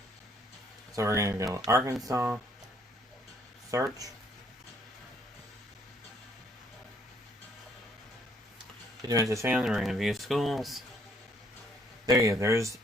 So we're going to go Arkansas, search. University found, we're going to view schools. There you go, there's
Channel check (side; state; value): both; normal; correlation 0.66